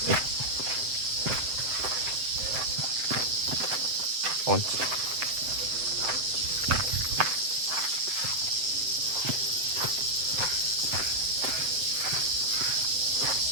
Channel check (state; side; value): late; left; 7.7 ms